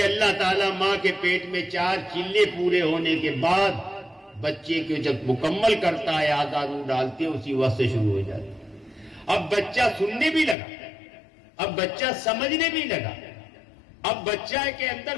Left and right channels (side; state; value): right; drops out; at 10.6 s